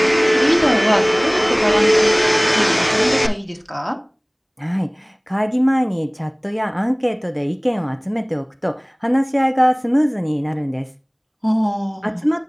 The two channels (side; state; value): both; identical; correlation 1.00